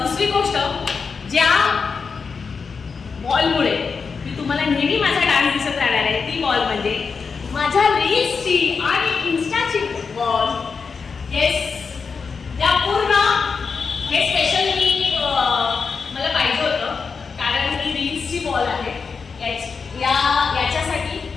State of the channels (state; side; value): quieter; right; 5.3 dB